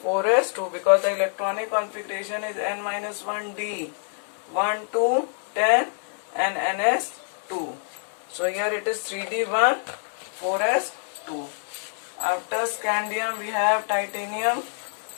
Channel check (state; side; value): silent; right; 61 dB below the other